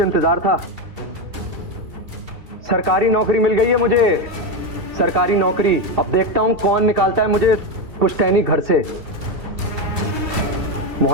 इंतजार था। सरकारी नौकरी मिल गई है मुझे, सरकारी नौकरी। अब देखता हूं कौन निकालता है मुझे पुश्तैनी घर से।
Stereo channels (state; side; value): late; left; 2.7 ms